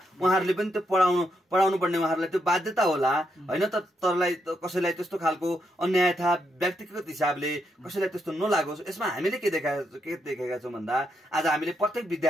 उहाँहरूले पनि त पढाउनु पर्ने उहाँहरूलाई त्यो बाध्यता होला होइन। तरलाई कसैलाई त्यस्तो खालको अन्याय था व्यक्तिगत हिसाबले कसैलाई त्यस्तो नलागोस्। यसमा हामीले के देखेका छौँ भन्दा आज हामीले प्रत्येक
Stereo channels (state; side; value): normal; both; correlation 0.80